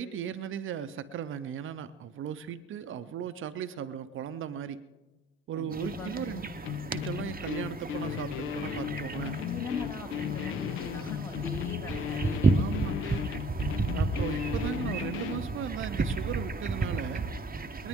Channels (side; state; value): both; normal; correlation 0.54